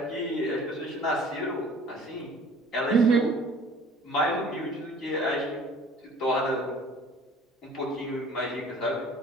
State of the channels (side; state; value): both; normal; correlation 0.49